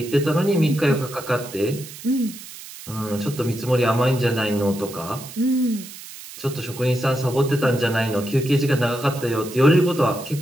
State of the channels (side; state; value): right; noise; hiss, 15 dB below the sound